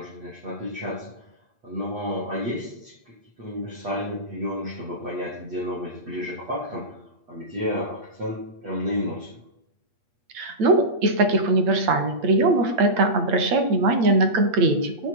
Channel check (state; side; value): late; left; 8.4 ms